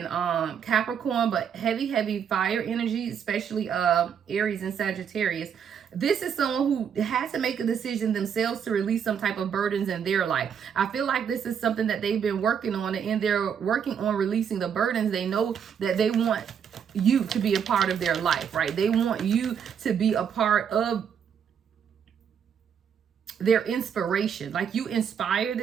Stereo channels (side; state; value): left; quieter; 7.7 dB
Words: Capricorn, but heavy fire energy, especially Aries and Sagittarius. This is someone who has to make a decision themselves to release some type of burdens in their life. I feel like this is something that they've been working on, and they're working on releasing the burdens. They know that they want you to be a part of their life, right? They want you to be a part of their inspiration. Like, you inspire